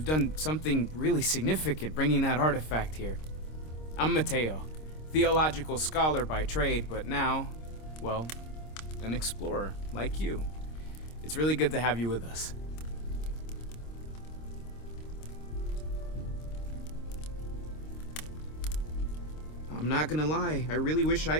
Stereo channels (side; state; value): right; late; 26 ms